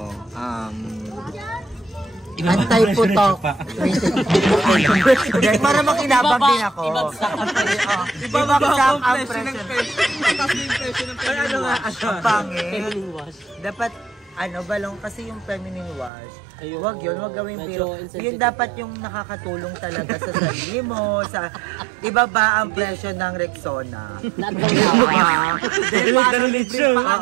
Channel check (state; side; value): drops out; left; at 16.1 s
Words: Anti-putok. Para makinabang din ako. Ibabagsak ang presyo. Ano nga? Ang pangit. Dapat balong kasi yung feminine wash. Wag yun, wag gawin pero yun dapat yung nakakatulong talaga sa sarili mo, sa ibaba ang presyo ng Rexona.